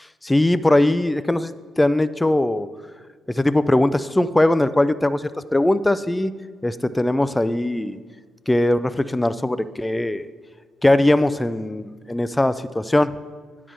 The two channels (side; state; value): both; normal; correlation 0.98